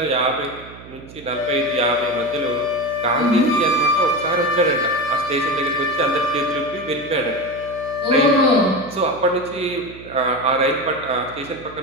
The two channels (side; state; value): right; noise; hum, 17 dB below the sound